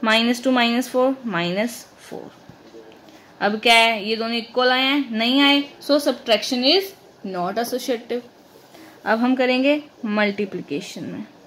-2 -4 -4। अब क्या है, ये दोनों इक्वल आए हैं, नहीं आए। सो सब्ट्रैक्शन इज नॉट एसोसिएटिव। अब हम करेंगे मल्टीप्लिकेशन में।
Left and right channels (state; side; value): identical; both; correlation 1.00